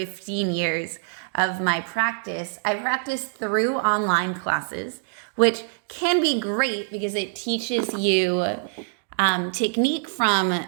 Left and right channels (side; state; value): left; silent; digital silence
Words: years of my practice, I practiced through online classes, which can be great because it teaches you technique from